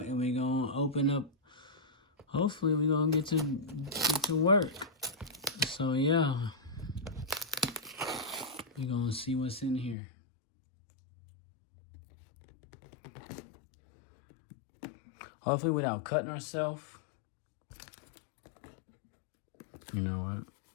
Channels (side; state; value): right; drops out; at 10.0 s